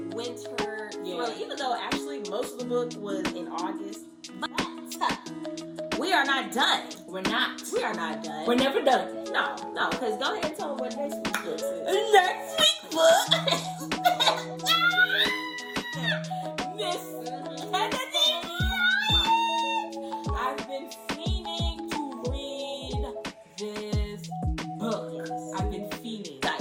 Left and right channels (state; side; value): identical; both; correlation 1.00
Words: Actually, most of the book was in August. But we are not done. We're not. We are not done. We're never done. No, because go ahead and tell them what next week's book is. Next week's book. Miss Kennedy. I've been fiending to read this book. I've been fiending.